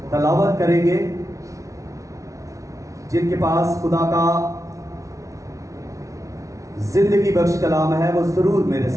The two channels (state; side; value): late; left; 0.16 ms